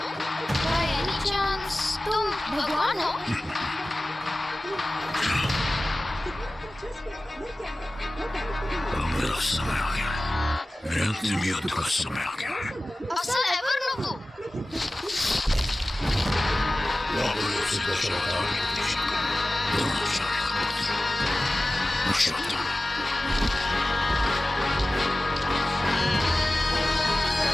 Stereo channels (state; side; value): normal; both; correlation 0.96